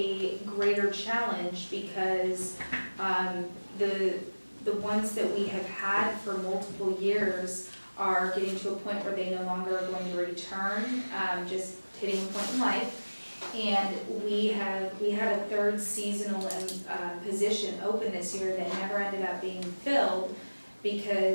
greater challenge because the ones that we have had for multiple years are getting to a point where they no longer are going to return, just hitting a point in life. And we had a third seasonal position open this year that never ended up being filled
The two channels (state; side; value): inverted; both; correlation -1.00